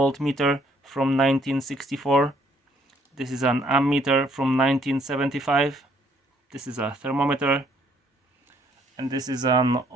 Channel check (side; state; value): both; normal; correlation 0.65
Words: from 1964. This is an ammeter from 1975. This is a thermometer. And this is an